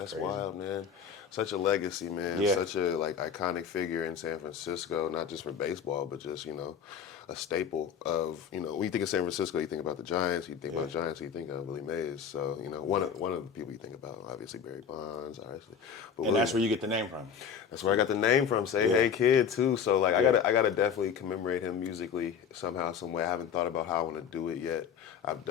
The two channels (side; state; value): right; quieter; 7.3 dB